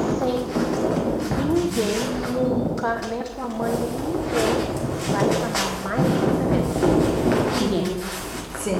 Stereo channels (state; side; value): identical; both; correlation 1.00